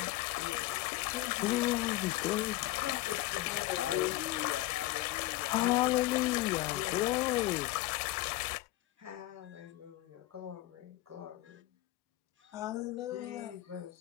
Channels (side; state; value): right; quieter; 17.4 dB